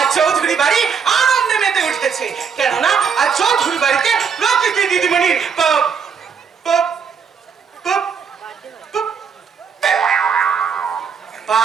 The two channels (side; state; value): left; quieter; 6.3 dB